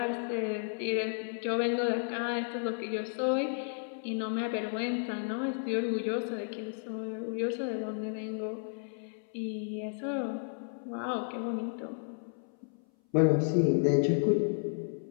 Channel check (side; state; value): right; silent; 56 dB below the other